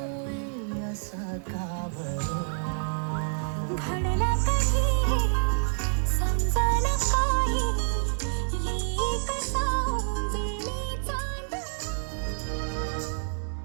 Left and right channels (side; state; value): left; silent; digital silence